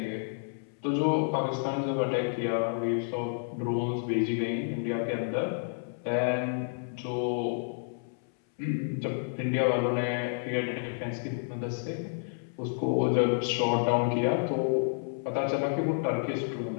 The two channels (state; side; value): silent; right; 58 dB below the other